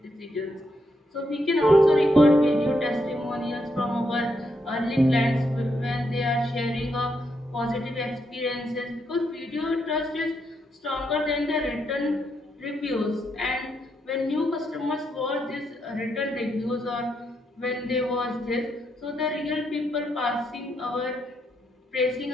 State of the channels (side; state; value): both; normal; correlation 0.79